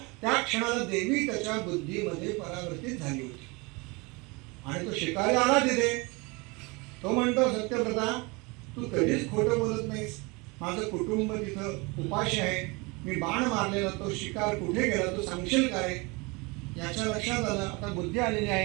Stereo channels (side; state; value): left; quieter; 27.0 dB